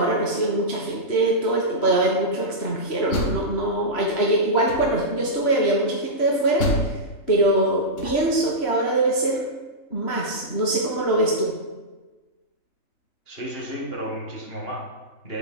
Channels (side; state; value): right; late; 3.1 ms